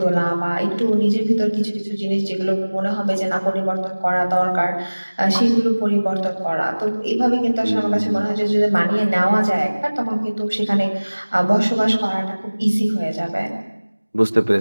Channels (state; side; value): inverted; both; correlation -1.00